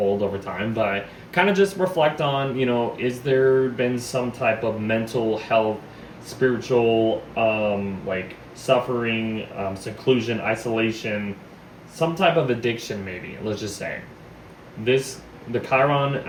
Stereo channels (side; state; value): both; identical; correlation 1.00